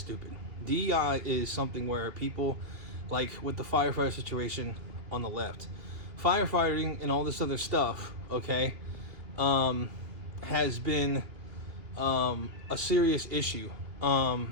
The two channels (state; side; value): late; left; 2.8 ms